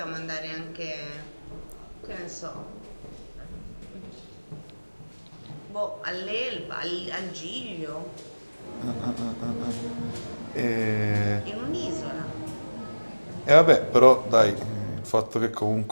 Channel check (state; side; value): inverted; both; correlation -1.00